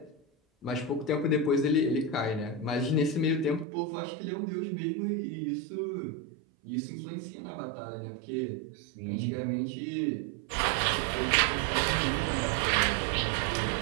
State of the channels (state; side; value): drops out; left; at 3.7 s